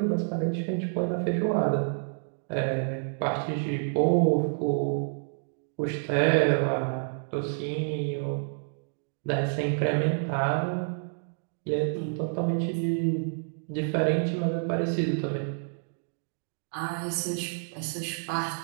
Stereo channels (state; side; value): silent; left; digital silence